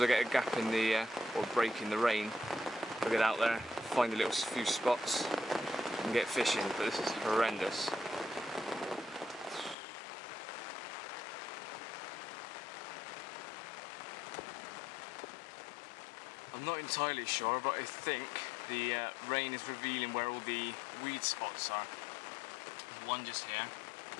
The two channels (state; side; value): drops out; right; at 9.8 s